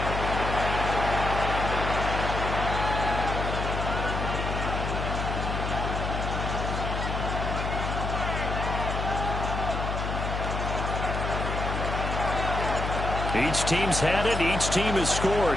Each team's had it. Each team has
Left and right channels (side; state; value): left; noise; hum, 2 dB below the sound